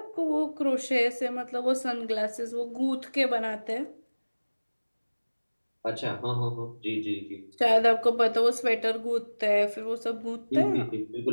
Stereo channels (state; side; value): inverted; both; correlation -1.00